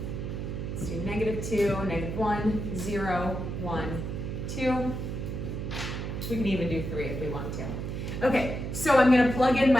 Let's do -2, -1, 0, 1, 2. We can even do 3 if we want to. Okay, so I'm going to plug in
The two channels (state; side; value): noise; right; hum, 4 dB below the sound